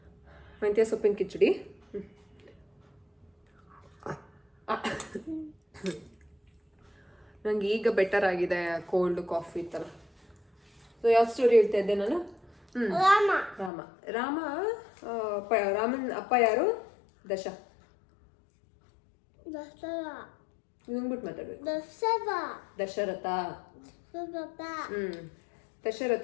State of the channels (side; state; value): right; drops out; at 13.7 s